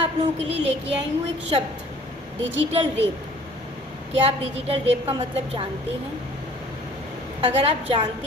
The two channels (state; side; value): normal; both; correlation 0.52